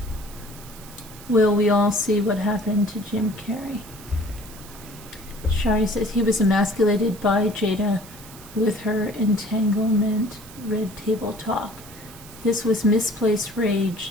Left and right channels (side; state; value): right; noise; hiss, 18 dB below the sound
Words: Will we all see what happened to Jim Carrey? Shari says he was emasculated by Jada with her entanglement red table talk. This was misplaced